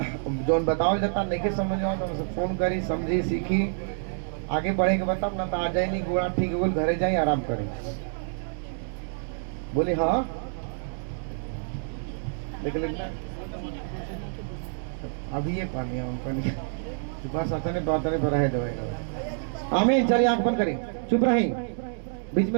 जोन बतावल जाता नहीं के समझ में तो हमसे फोन करी, समझी, सीखी, आगे बढ़े के बताओ ना तो आ जाए नहीं गोड़ा ठीक है घरे जाए आराम करी। बोली हाँ देख लेना अभी ये पानी हम पानी बस अपने बातने पर रहे दवाई। आमीन। चलिए आंख बंद करें, चुप रही, बीच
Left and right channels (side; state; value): left; silent; digital silence